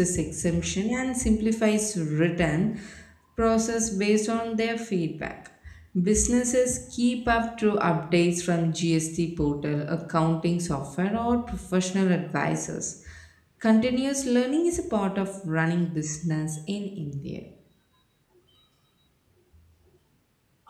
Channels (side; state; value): both; identical; correlation 1.00